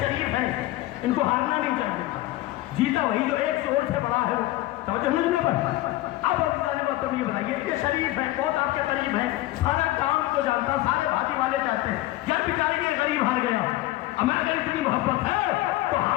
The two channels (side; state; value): right; quieter; 17.1 dB